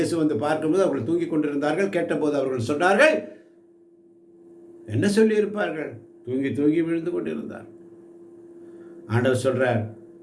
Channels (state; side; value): identical; both; correlation 1.00